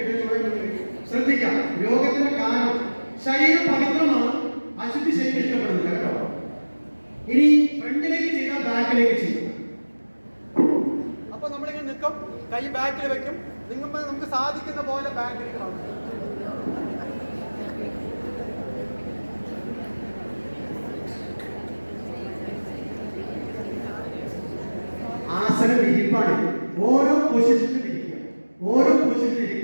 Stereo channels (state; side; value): inverted; both; correlation -1.00